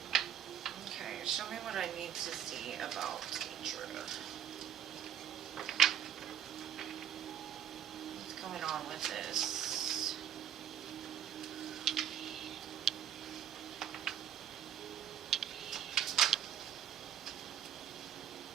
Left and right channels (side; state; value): left; quieter; 9.8 dB